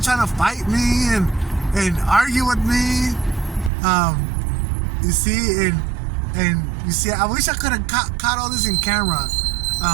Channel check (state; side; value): drops out; left; at 3.7 s